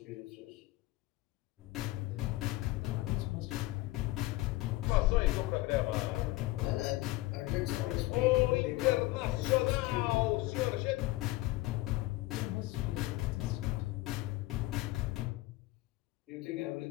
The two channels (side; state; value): right; quieter; 19.5 dB